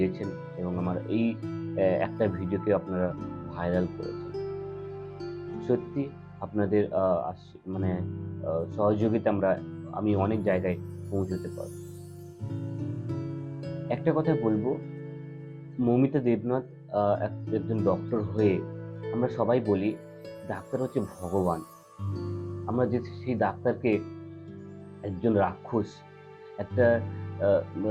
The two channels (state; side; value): identical; both; correlation 1.00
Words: এবং আমার এই একটা ভিডিওকে আপনারা ভাইরাল করেছেন। সত্যি আপনাদের মানে সহযোগিতা আমি অনেক জায়গায় পৌঁছতে পারব। একটা কথা বলবো, মৌমিতা দেবনাথ একজন ডক্টর হয়ে আমরা সবাই বলি ডাক্তার হচ্ছে ভগবান। আমরা যে সেই ডাক্তারকে একজন রাক্ষস, একটা আহ,